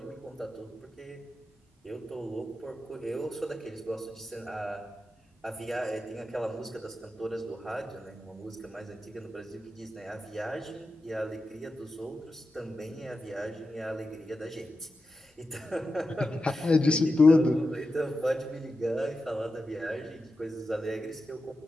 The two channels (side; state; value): both; normal; correlation 0.90